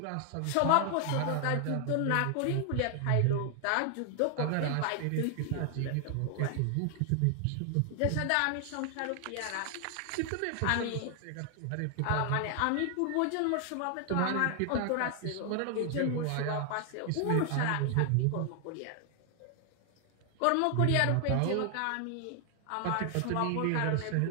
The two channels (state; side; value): different; both; correlation 0.00